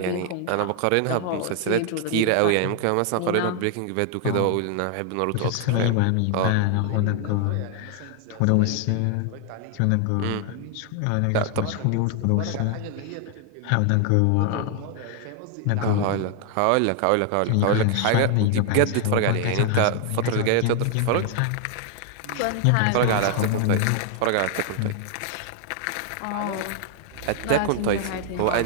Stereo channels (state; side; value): different; both; correlation 0.00